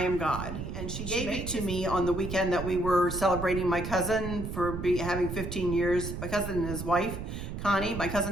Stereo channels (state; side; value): noise; right; rumble, 6 dB below the sound